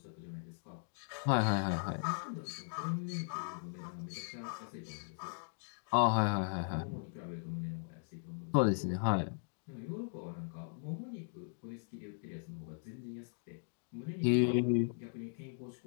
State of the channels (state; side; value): silent; right; digital silence